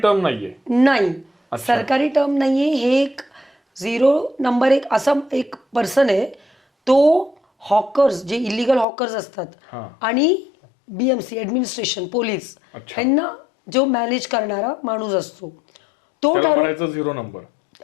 नाहीये? नाही, सरकारी टर्म नाहीये. हे एक 0 नंबर एक असा एक पर्सन आहे, तो हॉकर्स, जे इलिगल हॉकर्स असतात आणि BMC ऍडमिनिस्ट्रेशन, पोलीस, यांना जो मॅनेज करणारा माणूस असतो, तो 0 नंबर.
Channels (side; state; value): right; drops out; at 8.8 s